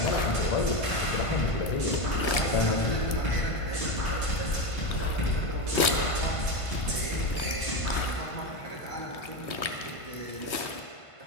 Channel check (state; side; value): late; right; 1.5 ms